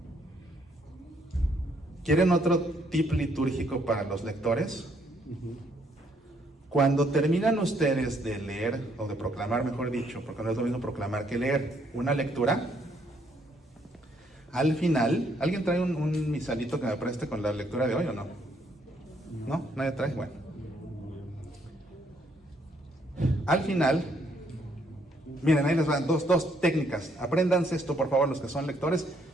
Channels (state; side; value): normal; both; correlation 0.70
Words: ¿Quieren otro tip litúrgico para los lectores? Cuando terminan ustedes de leer, o de proclamar, mejor dicho, porque no es lo mismo proclamar que leer, una lectura, al final, ¿alguien trae un misalito que me preste con la lectura de hoy o no? ¿No? ¿Nadie trae? Bueno. Al final, Miren, ahí les van dos técnicas. Apréndanse esto, por favor, los que son lectores.